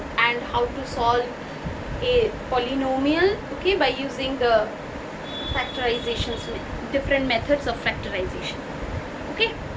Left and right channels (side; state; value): both; identical; correlation 1.00